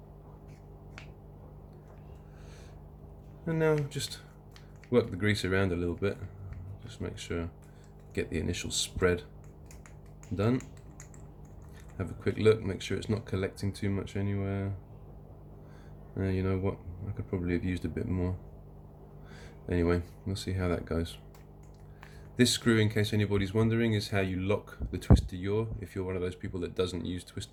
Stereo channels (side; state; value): both; identical; correlation 1.00